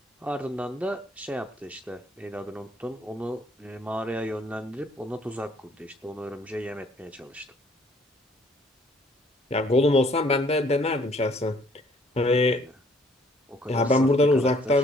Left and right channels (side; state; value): both; normal; correlation 0.62